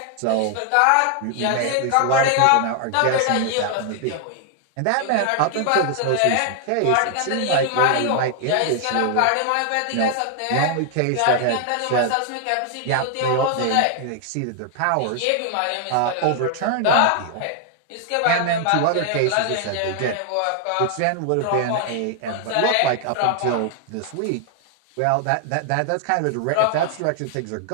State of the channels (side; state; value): both; different; correlation 0.00